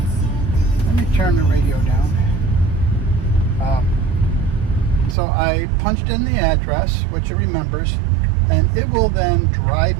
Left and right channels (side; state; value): left; drops out; at 5.2 s